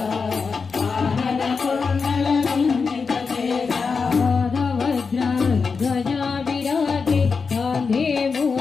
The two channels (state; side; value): quieter; right; 5.1 dB